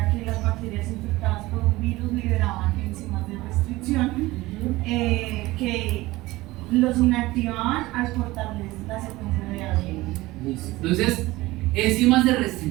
que las bacterias infectadas por un virus liberaban enzimas de restricción que los inactivaban al cortarles la secuencia de ADN. Entonces, enzimas de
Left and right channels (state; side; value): quieter; left; 19.2 dB